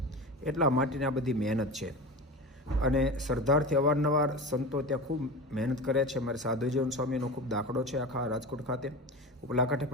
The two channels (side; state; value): both; normal; correlation 0.29